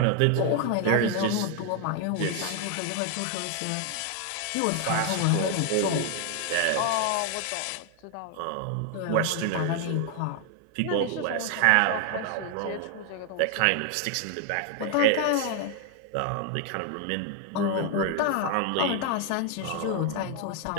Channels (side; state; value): both; different; correlation 0.00